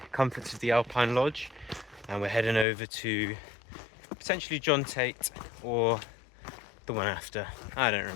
comforts of the Alpine Lodge and we're heading over to potentially John Tate or the one after. I don't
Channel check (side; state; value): right; drops out; at 2.7 s